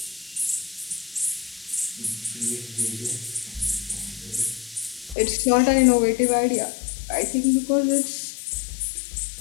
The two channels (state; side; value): drops out; right; at 5.2 s